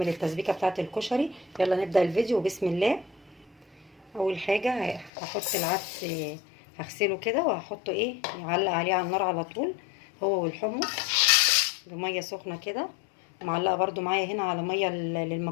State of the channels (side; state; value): right; drops out; at 5.1 s